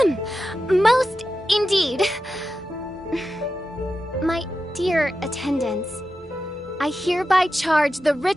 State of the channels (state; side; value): normal; both; correlation 0.91